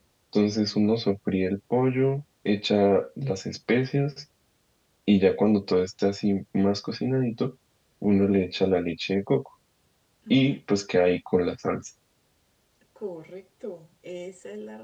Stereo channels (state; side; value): identical; both; correlation 1.00